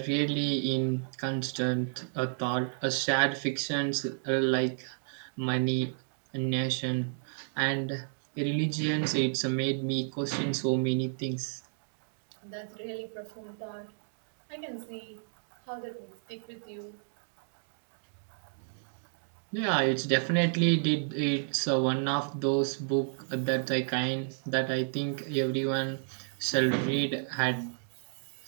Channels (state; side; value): silent; left; digital silence